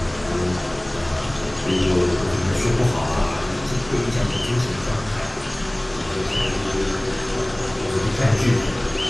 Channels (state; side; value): noise; right; hum, 25 dB below the sound